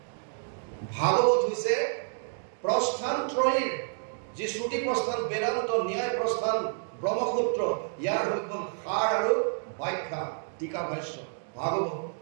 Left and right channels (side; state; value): left; silent; digital silence